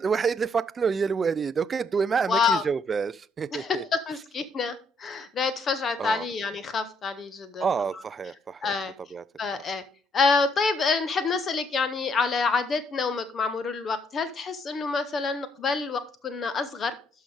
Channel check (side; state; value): both; normal; correlation 0.70